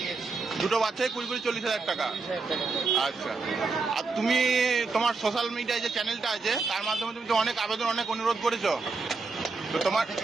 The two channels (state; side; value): quieter; left; 4.2 dB